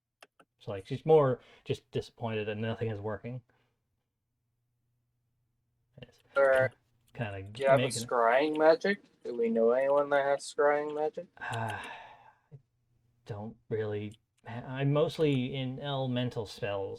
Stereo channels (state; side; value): identical; both; correlation 1.00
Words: So like she's more just disappointed that nothing is working. It's Or kind do of you have a making. scrying magic? Do we know anyone that has scrying magic? I don't really. I'm mostly in elemental